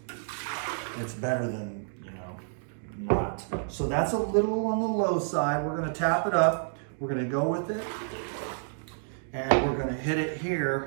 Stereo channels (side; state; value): left; silent; digital silence